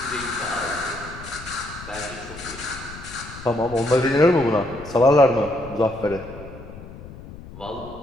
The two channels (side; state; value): left; noise; rumble, 15 dB below the sound